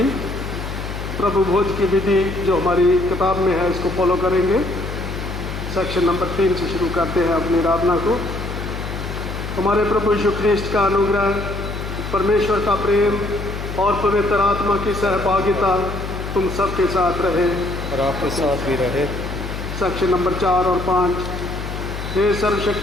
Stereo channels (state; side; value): noise; left; hum, 7 dB below the sound